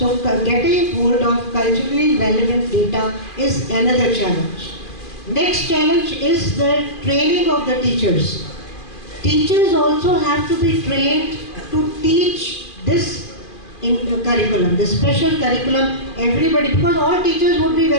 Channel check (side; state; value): right; late; 2.4 ms